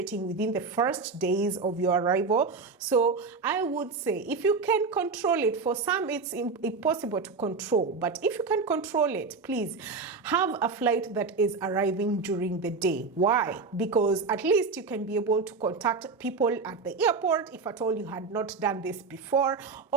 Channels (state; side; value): quieter; left; 4.5 dB